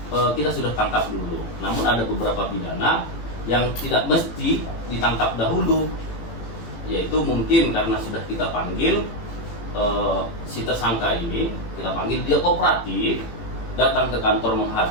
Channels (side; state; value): right; late; 18 ms